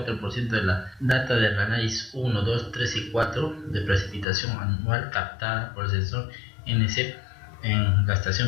de la data del análisis 1, 2, 3 y 4 de precipitación anual captada por el sensor NCEP en la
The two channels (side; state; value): right; drops out; at 4.2 s